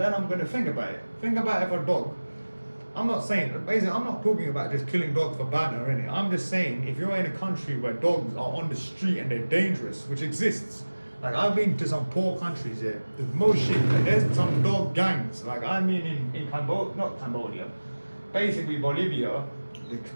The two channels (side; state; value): both; inverted; correlation -1.00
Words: I'm gonna think about it. Think about if a dog, I'm not saying, basically I'm not talking about just killing dogs for banter or anything. I'm just saying, if you're in a country where dogs are on the street and they're dangerous, which exists, like I've been to some poor countries here, there's most shit, like there's some dog gangs. Like I mean in Cambodia, not Cambodia, basically Bolivia, the